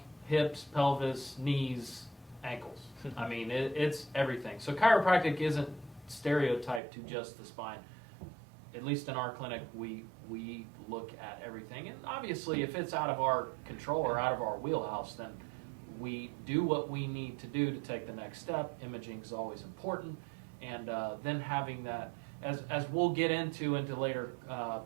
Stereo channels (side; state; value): left; drops out; at 6.8 s